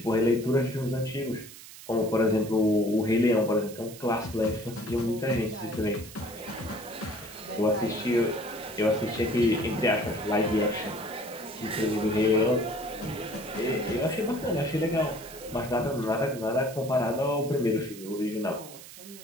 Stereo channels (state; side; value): noise; right; hiss, 16 dB below the sound